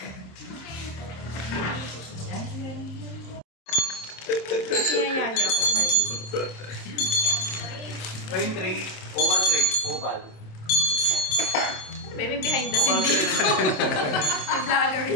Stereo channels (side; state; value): right; late; 27 ms